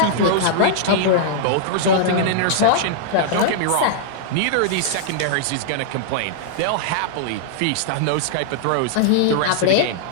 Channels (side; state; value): both; different; correlation -0.01